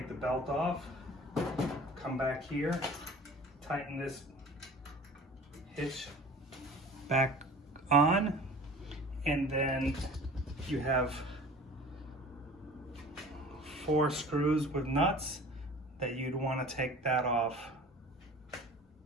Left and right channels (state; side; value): normal; both; correlation 0.43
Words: the belt off, come back here, tighten this hitch back on, and then you have 4 screws with nuts that you'd want to take that off.